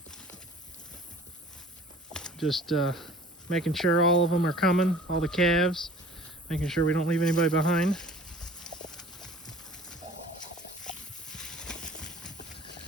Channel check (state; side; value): normal; both; correlation 0.46